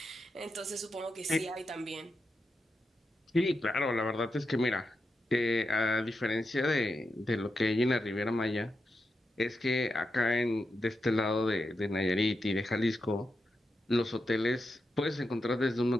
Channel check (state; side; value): normal; both; correlation 0.87